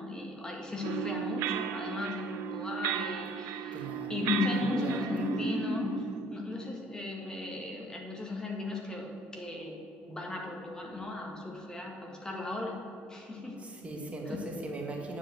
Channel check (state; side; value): normal; both; correlation 0.56